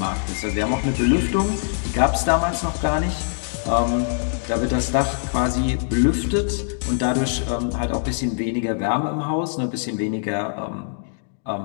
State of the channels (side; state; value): right; silent; digital silence